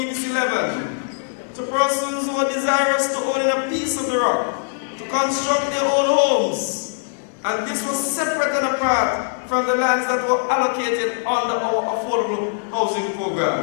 11 to persons who are desirous to own a piece of the rock to construct their own homes. And this was separate and apart from the lands that were allocated under our affordable housing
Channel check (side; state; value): right; silent; 65 dB below the other